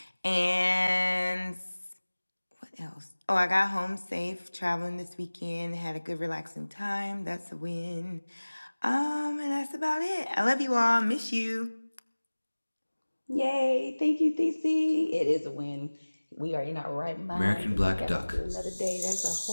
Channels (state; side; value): inverted; both; correlation -1.00